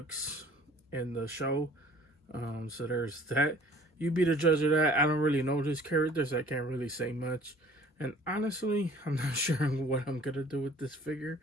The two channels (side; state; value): both; normal; correlation 0.52